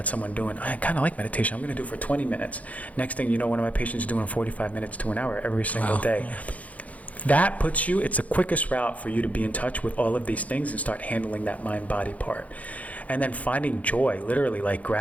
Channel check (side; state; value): right; late; 0.069 ms